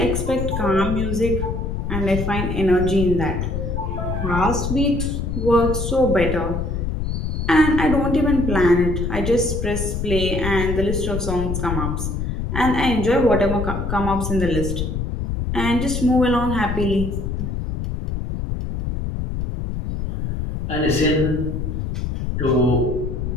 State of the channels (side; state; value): left; noise; rumble, 2 dB below the sound